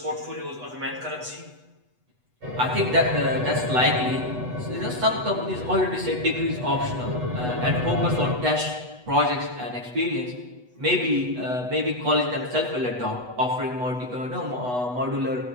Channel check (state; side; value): late; left; 8.1 ms